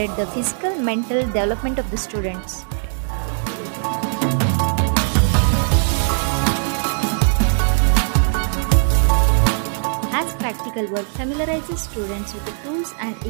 the physical mental development of the students. As practical work familiarizes students with the tools and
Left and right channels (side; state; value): left; silent; 66 dB below the other